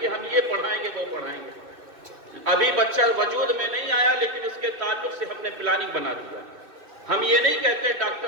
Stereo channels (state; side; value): late; left; 2.6 ms